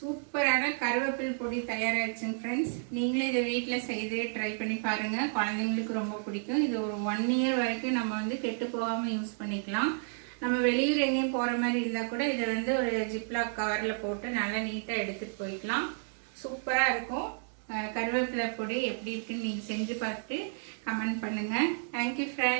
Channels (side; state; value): left; silent; digital silence